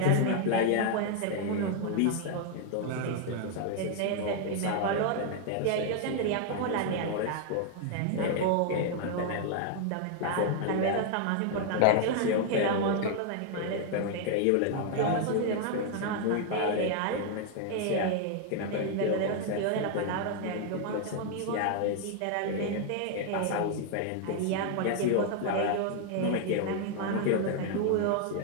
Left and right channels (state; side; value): different; both; correlation 0.00